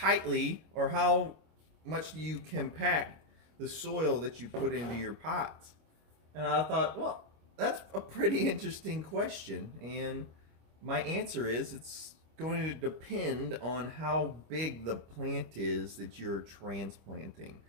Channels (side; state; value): left; late; 25 ms